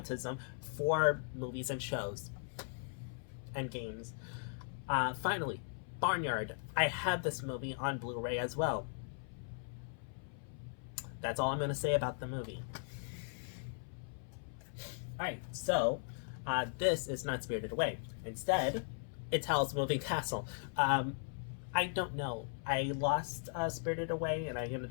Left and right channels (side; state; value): right; silent; 52 dB below the other